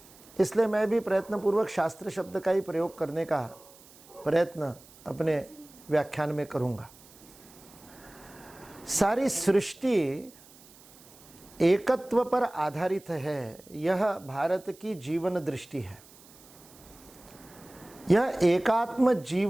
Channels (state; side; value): noise; right; hiss, 23 dB below the sound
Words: इसलिए मैं भी प्रयत्नपूर्वक शास्त्र शब्द का ही प्रयोग करने का प्रयत्न अपने व्याख्यान में करूंगा। सारी सृष्टि एकत्व पर आधारित है, यह भारत की जीवन दृष्टि है। यह एकात्म